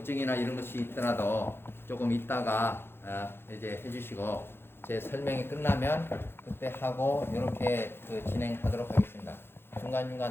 이런 것이 있더라도 조금 있다가 이제 해주시고 제 설명이 끝나면 그때 하고 이렇게 진행하도록 하겠습니다.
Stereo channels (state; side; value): late; right; 0.11 ms